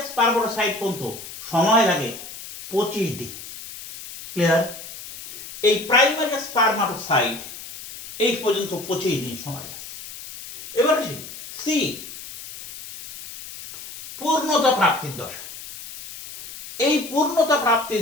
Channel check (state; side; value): noise; left; hiss, 13 dB below the sound